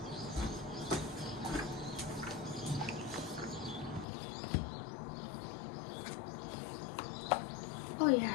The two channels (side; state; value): right; drops out; at 4.0 s